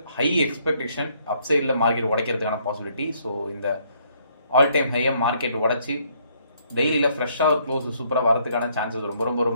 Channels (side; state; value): both; inverted; correlation -0.68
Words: ஹை எக்ஸ்பெக்டேஷன் அப்சைடில் மார்க்கெட் உடைக்கிறதுக்கான பாசிபிலிட்டி. ஸோ இந்த ஆல் டைம் ஹையை மார்க்கெட் உடச்சி டெய்லியில் ஃப்ரெஷ்ஷாக ஒரு க்ளோஸ் சூப்பராக வரதுக்கான சான்சஸ்